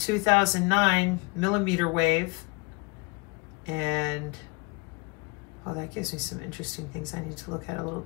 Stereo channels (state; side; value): quieter; right; 29.3 dB